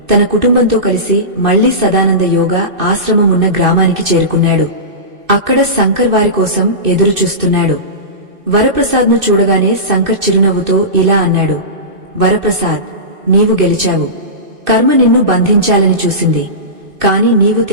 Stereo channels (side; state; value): left; late; 2.6 ms